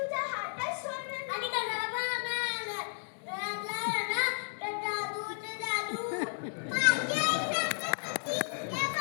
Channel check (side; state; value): right; silent; digital silence